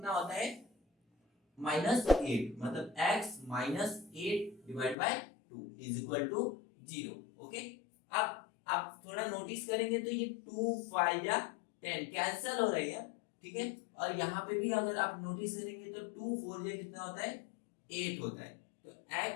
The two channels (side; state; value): right; drops out; at 5.0 s